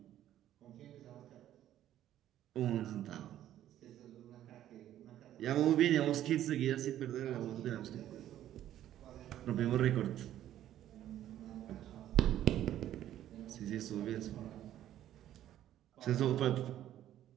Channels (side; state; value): left; quieter; 12.1 dB